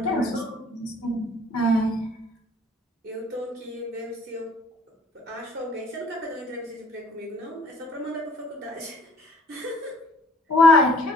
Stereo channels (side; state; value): both; normal; correlation 0.55